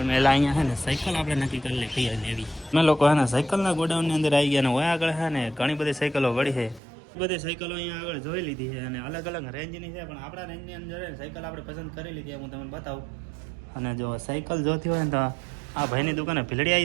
પહેલાં અહીંયા છે ને સાયકલ આપણે નક્કી કરી લે કઈ લેવી. અમે લોકો હે ને સાયકલના ગોડાઉનની અંદર આવી ગયા, ને હોય આગળ છે ને ઘણી બધી સાયકલો વળી છે. બધી સાયકલો અહીંયા આગળ જોઈ લીધી છે, અને અલગ અલગ રેન્જની છે, પણ આપણા રેન્જની અંદર સાયકલ આપણે પસંદ કરી લીધી, હું તમને બતાવું. અને જો સાયકલ જોતી હોય ને તો આ ભાઈની દુકાને ભીલડી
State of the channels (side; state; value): left; drops out; at 6.8 s